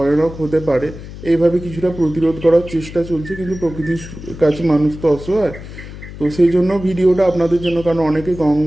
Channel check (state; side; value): noise; left; hum, 13 dB below the sound